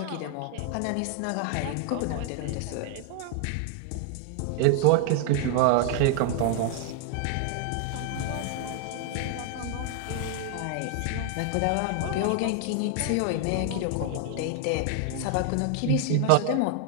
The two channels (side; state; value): both; different; correlation 0.00